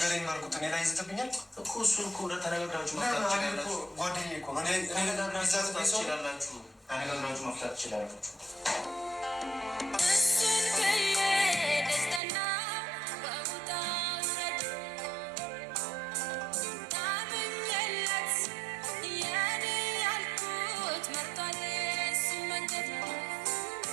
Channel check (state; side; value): drops out; left; at 12.2 s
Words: ማርኩት እኔ ላይ ይዘትብኛል እኮ እሱን እኮ ተነጋግራችሁ መፍታት ትችላላችሁ። ጓደኛዬ እኮ ተነጋግራችሁ መፍታት ትችላላችሁ።